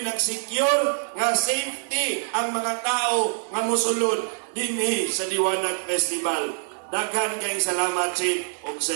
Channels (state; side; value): silent; left; digital silence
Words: nag-secure nga safety ang mga tao nga mosulod dinhi sa Diwanag Festival. Daghan kayong salamat Chief ug